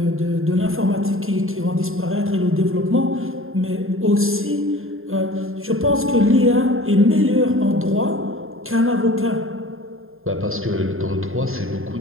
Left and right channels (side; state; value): left; late; 0.61 ms